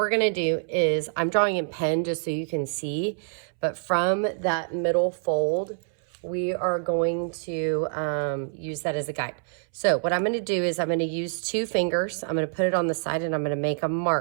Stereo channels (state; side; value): silent; left; 61 dB below the other